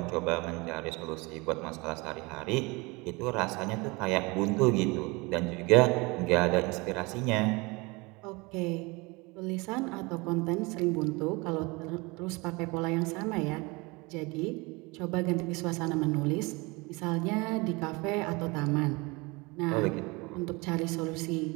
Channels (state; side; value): quieter; left; 25.7 dB